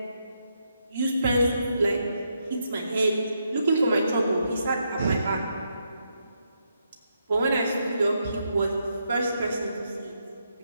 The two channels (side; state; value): both; inverted; correlation -0.80